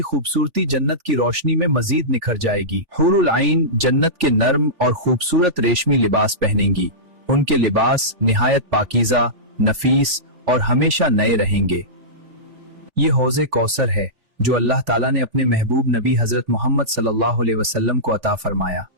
खूबसूरती जन्नत की रोशनी में मजीद निखर जाएगी। हूरुल ऐन जन्नत के नर्म और खूबसूरत रेशमी लिबास पहनेंगी। उनके लिबास निहायत पाकीज़ा, नफीस और हमेशा नए रहेंगे। ये हौज़े कौसर है जो अल्लाह ताला ने अपने महबूब नबी हजरत मोहम्मद सल्लल्लाहु अलैहि वसल्लम को अता फरमाया।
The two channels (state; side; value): late; left; 3.4 ms